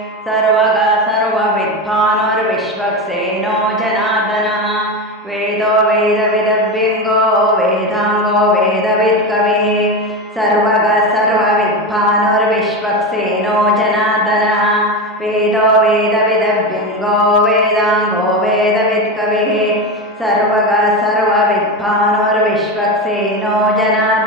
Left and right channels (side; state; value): both; normal; correlation 0.18